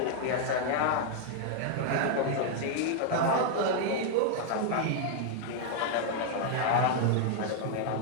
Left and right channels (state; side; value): different; both; correlation 0.00